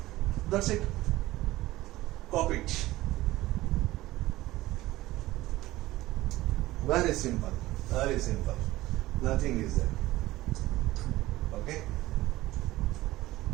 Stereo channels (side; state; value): left; quieter; 17.3 dB